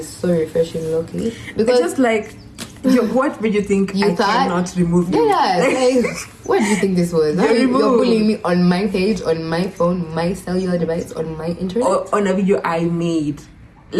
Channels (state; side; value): identical; both; correlation 1.00